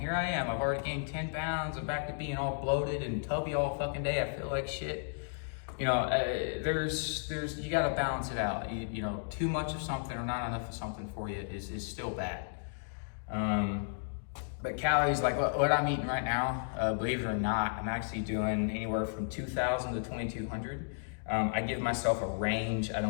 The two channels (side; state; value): right; silent; digital silence